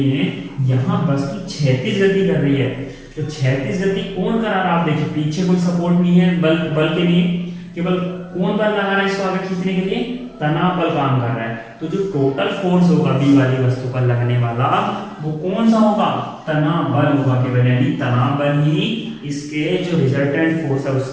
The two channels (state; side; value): identical; both; correlation 1.00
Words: यहाँ वस्तु क्षैतिज गति कर रही है, तो क्षैतिज गति कौन करा रहा है, आप देखिए पीछे कोई सपोर्ट नहीं है बल के लिए, केवल कौन बल लगा रहा है इसको आगे खींचने के लिए, तनाव बल काम कर रहा है। तो जो टोटल फोर्स होगा बी वाली वस्तु पर लगने वाला वो कौन सा होगा, तनाव बल होगा केवल, यानी तनाव बल ही इसके जो रिजल्टेंट फोर्स है